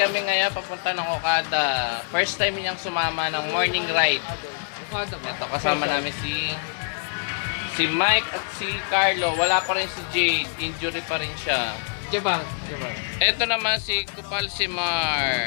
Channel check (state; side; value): silent; right; digital silence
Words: ngayon papunta ng Okada. First time niyang sumama ng morning ride. Ito, kasama namin si Mike at si Carlo. Wala pa rin si Jade. Injury pa rin siya. Jebang. Ito naman si Kupal si Mar.